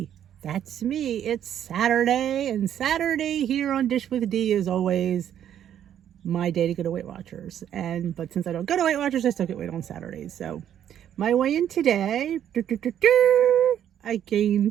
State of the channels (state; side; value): quieter; left; 10.2 dB